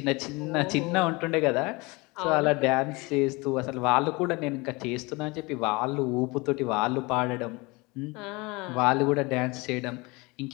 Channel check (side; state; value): right; quieter; 25.4 dB